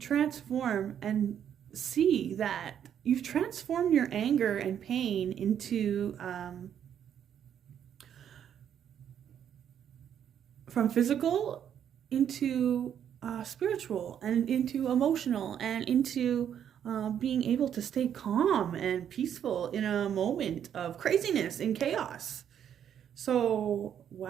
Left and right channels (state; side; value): quieter; left; 9.2 dB